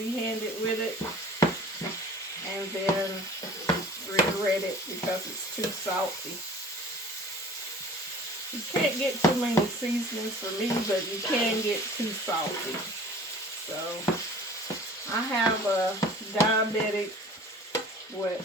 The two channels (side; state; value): both; normal; correlation 0.45